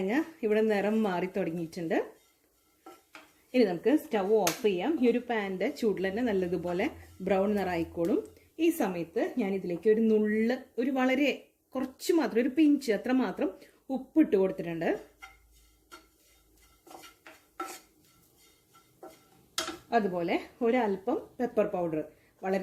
ഇവിടെ നിറം മാറി തുടങ്ങിയിട്ടുണ്ട്. ഇനി നമുക്ക് സ്റ്റവ് ഓഫ് ചെയ്യാം. ഈ ഒരു പാനിൻ്റെ ചൂടിൽ തന്നെ നല്ലതുപോലെ ബ്രൗൺ നിറായിക്കോളും. ഈ സമയത്ത് ഞാൻ ഇതിലേക്ക് ഒരു നുള്ള്, ഒരു വളരെ കുറച്ച് മാത്രം, ഒരു പിഞ്ച് അത്ര മാത്രം ഉപ്പിട്ട് കൊടുത്തിട്ടുണ്ട്. അതുപോലെ ഒരല്പം പെപ്പർ പൗഡർ,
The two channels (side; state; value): both; identical; correlation 1.00